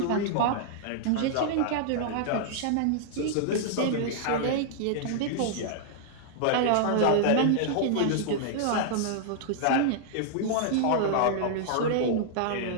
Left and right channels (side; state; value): both; different; correlation -0.01